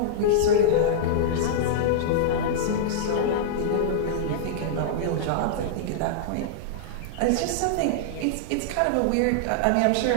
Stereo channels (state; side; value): different; both; correlation -0.02